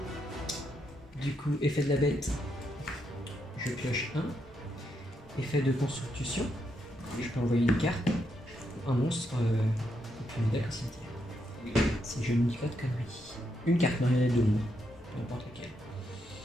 Du coup, effet de la bête, je pioche 1. Effet de construction, je peux envoyer une carte ou un monstre au plus modèle au cimetière. Oui. Si je ne dis pas de conneries. Une carte marionnette de l'ombre, n'importe laquelle.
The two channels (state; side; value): normal; both; correlation 0.80